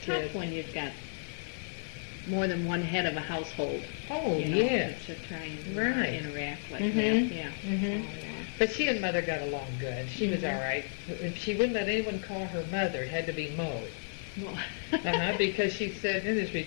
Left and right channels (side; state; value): right; silent; digital silence